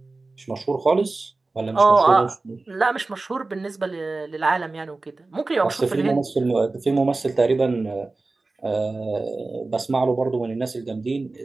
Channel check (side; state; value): left; quieter; 3.4 dB